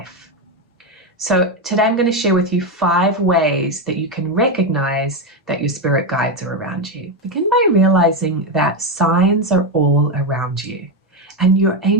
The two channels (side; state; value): both; normal; correlation 0.09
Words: So today I'm going to share with you 5 ways that you can recognize that your spirit guides are around you. Begin by realizing that signs are all around you. And your